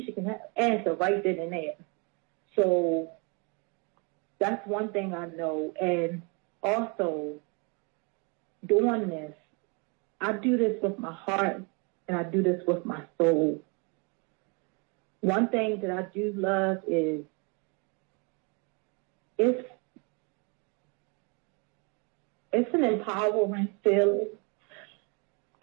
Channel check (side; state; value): left; quieter; 32.8 dB